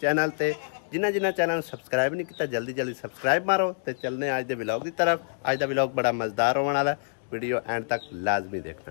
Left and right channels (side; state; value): right; silent; digital silence